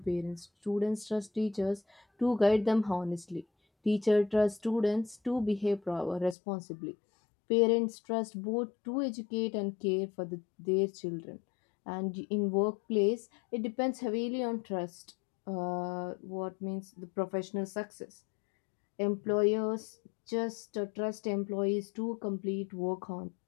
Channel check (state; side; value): drops out; right; at 6.4 s